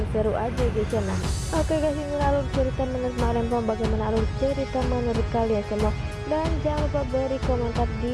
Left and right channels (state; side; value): identical; both; correlation 1.00